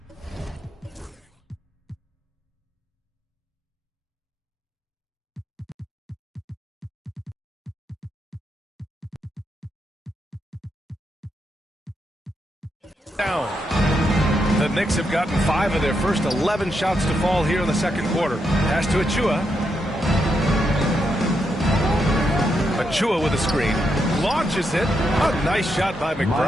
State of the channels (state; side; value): normal; both; correlation 0.82